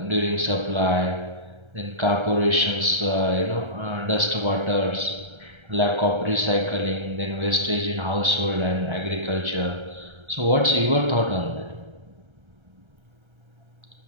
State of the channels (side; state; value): left; late; 1.3 ms